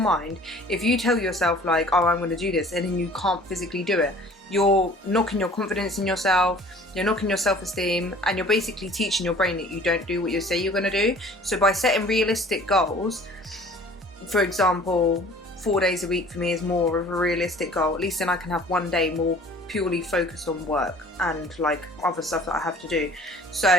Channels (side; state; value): both; normal; correlation 0.49